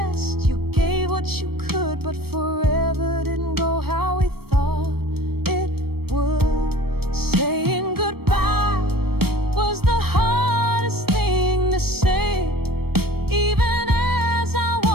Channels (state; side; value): late; left; 0.96 ms